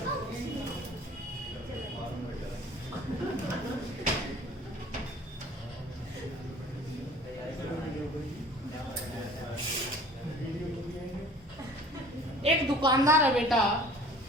एक दुकानदार है बेटा,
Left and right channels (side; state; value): both; normal; correlation 0.48